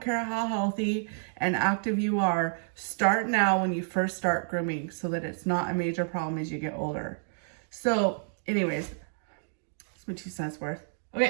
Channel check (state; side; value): silent; left; digital silence